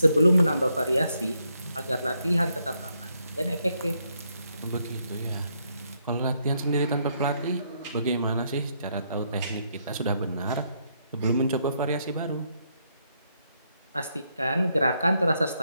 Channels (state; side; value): inverted; both; correlation -0.77